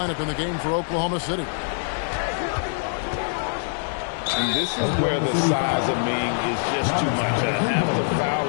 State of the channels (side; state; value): right; silent; digital silence